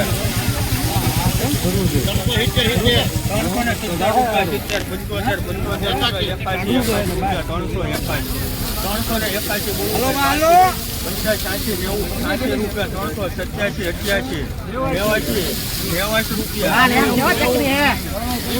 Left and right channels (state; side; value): identical; both; correlation 1.00